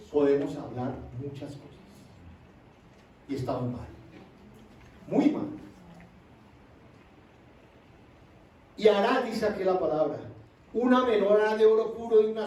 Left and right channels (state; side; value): identical; both; correlation 1.00